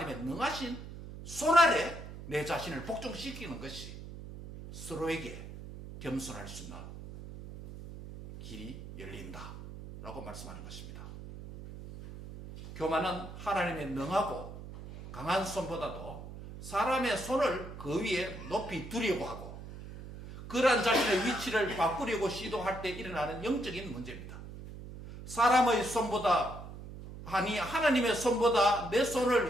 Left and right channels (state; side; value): noise; right; hum, 12 dB below the sound